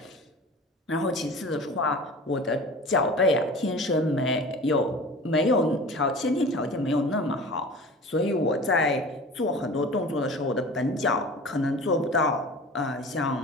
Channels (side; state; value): both; normal; correlation 0.39